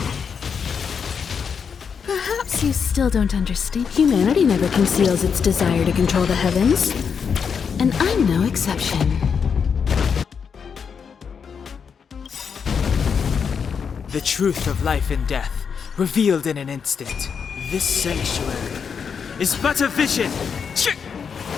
Perhaps you still don't understand. Humanity never conceals its desire to control the heavens. And I'm no exception. The truth of life and death, revealed in an instant. This sanctuary is but a vision.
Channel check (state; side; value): quieter; right; 6.5 dB